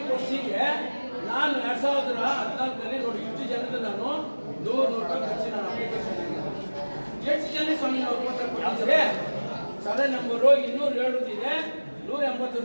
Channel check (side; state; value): both; inverted; correlation -1.00